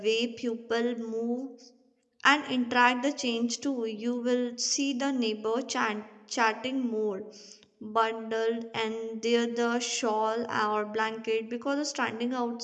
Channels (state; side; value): identical; both; correlation 1.00